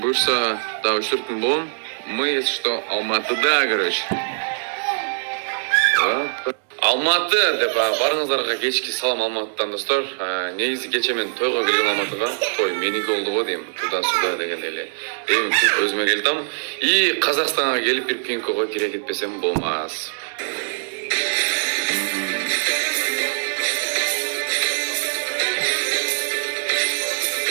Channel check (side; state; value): left; silent; digital silence